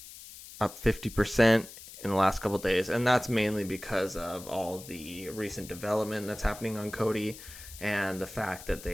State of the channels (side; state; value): left; noise; hiss, 15 dB below the sound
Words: up 50% in the last couple of days. And that's mainly because of all the recent development that's happening on Cody and the fact that